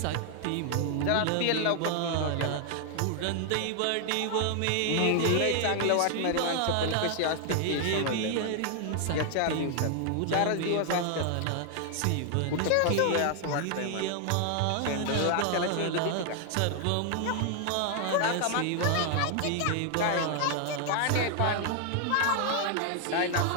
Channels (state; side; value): different; both; correlation 0.00